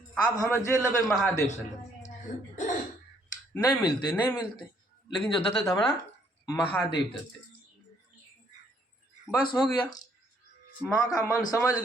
आब हम जे लेबै महादेव से लेबै, नहीं मिलते नहीं मिलते, लेकिन जो देते थे हमारा महादेव देते। बस हो गया। माँ का मन समझ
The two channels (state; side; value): normal; both; correlation 0.67